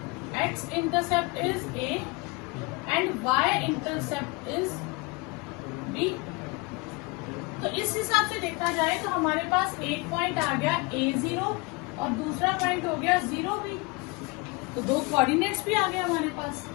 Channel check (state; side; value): quieter; right; 26.4 dB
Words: x intercept is a and y intercept is b. तो इस हिसाब से देखा जाए तो हमारे पास एक पॉइंट आ गया A0 और दूसरा पॉइंट हो गया 0B। तो दो कोऑर्डिनेट्स भी आ गए हमारे पास।